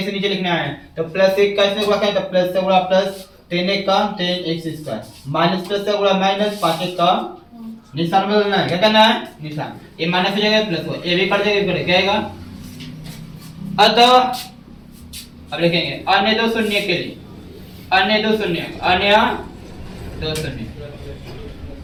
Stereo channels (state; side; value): identical; both; correlation 1.00